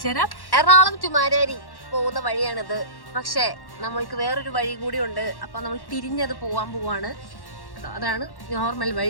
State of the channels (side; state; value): right; late; 1.1 ms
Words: തരാം. എറണാകുളം ടു മാരാരി പോകുന്ന വഴിയാണിത്. പക്ഷേ നമ്മൾക്ക് വേറൊരു വഴി കൂടി ഉണ്ട്. അപ്പൊ നമ്മൾ തിരിഞ്ഞത് പോവാൻ പോവാണ്. അതാണ് നോർമൽ